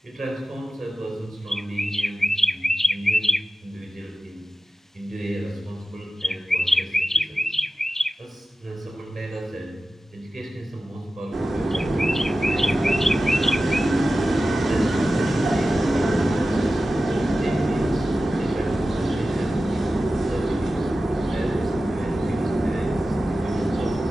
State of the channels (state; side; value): normal; both; correlation 0.94